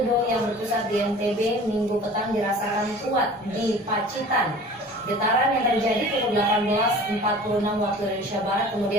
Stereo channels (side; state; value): both; normal; correlation 0.43